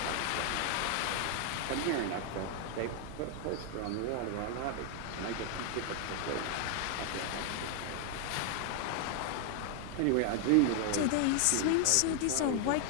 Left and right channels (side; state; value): both; different; correlation 0.00